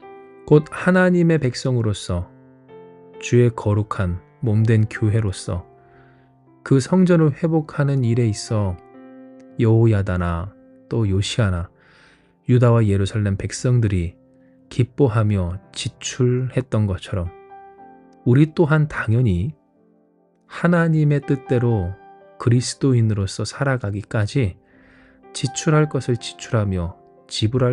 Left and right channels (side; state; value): both; identical; correlation 1.00